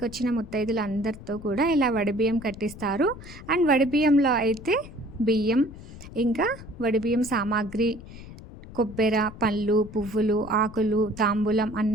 వచ్చిన ముత్తైదులు అందరితో కూడా ఇలా వడిబియ్యం కట్టిస్తారు. అండ్ వడిబియ్యంలో అయితే బియ్యం, ఇంకా వడిబియ్యం సామాగ్రి, కొబ్బెర, పళ్ళు, పువ్వులు, ఆకులు, తాంబూలం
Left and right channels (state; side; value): noise; left; rumble, 15 dB below the sound